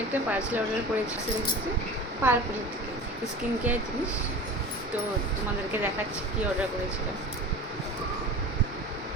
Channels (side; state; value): both; normal; correlation 0.35